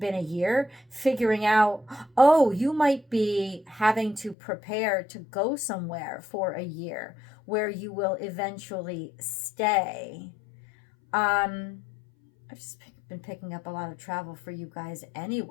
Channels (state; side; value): drops out; right; at 4.4 s